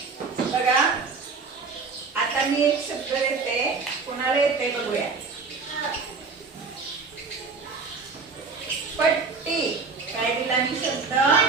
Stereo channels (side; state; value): left; quieter; 4.6 dB